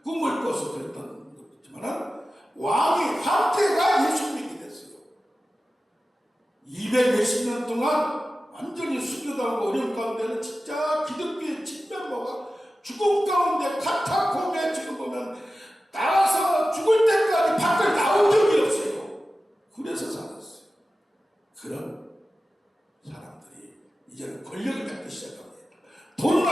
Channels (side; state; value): both; normal; correlation 0.94